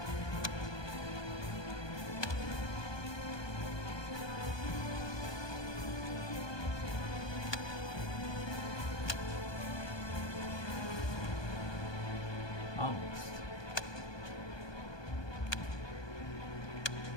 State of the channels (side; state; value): right; late; 1.2 ms